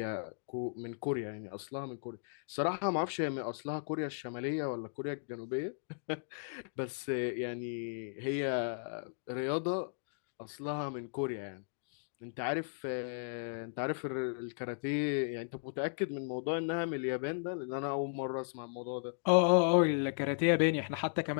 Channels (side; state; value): right; silent; digital silence